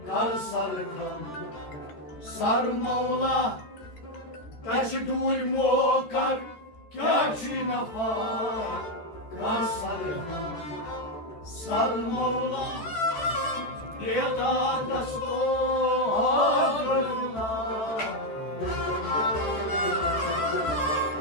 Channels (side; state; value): right; late; 13 ms